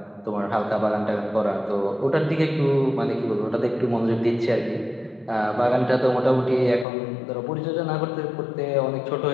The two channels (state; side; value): drops out; right; at 6.9 s